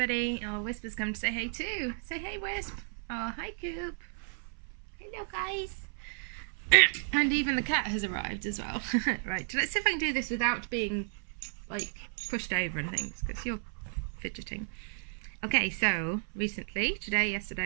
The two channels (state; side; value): silent; left; 56 dB below the other